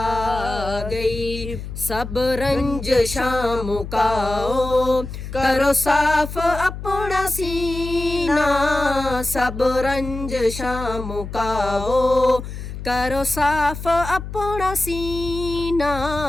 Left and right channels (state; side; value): noise; left; hum, 9 dB below the sound